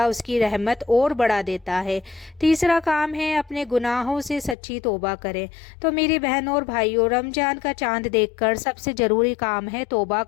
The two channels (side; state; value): right; drops out; at 4.5 s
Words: उसकी रहमत और बढ़ा देता है। तीसरा काम है, अपने गुनाहों से सच्ची तौबा करें। तो मेरी बहनों और भाइयों, रमज़ान का चांद देखकर सबसे ज़रूरी काम है तौबा